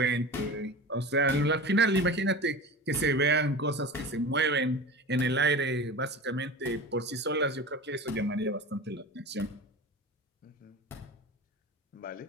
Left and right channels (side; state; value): both; normal; correlation 0.32